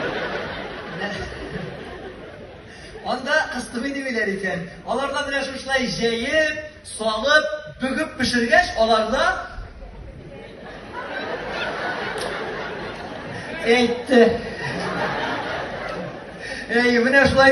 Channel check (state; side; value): identical; both; correlation 1.00